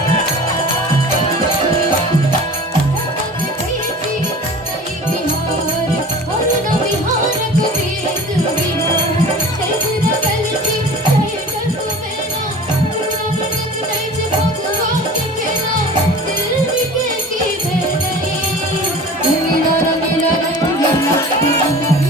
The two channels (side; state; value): both; normal; correlation 0.40